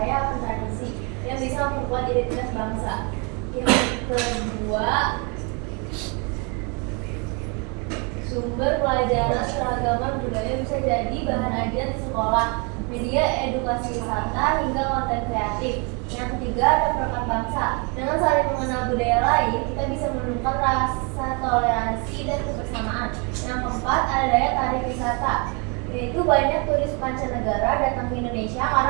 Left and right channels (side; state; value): left; quieter; 33.1 dB